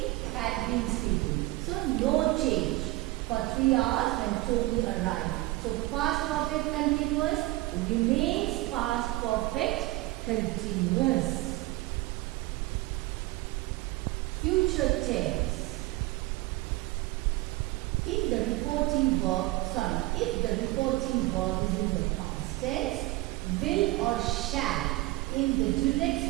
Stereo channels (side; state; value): left; quieter; 19.5 dB